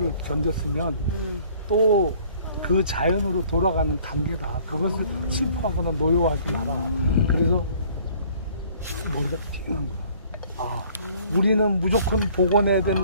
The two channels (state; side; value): inverted; both; correlation -0.56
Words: 견뎠으면 또 그 자연으로 돌아가는 단계다. 그것을 슬퍼하거나 노여워하지 마라. 그래서 머리가 띵한 거야. 아, 우리는 무조건 복원해야